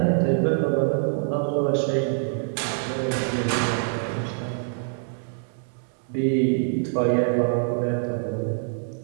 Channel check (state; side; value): silent; left; digital silence